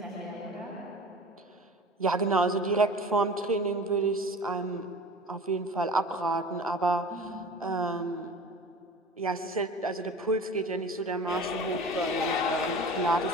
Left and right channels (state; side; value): normal; both; correlation 0.39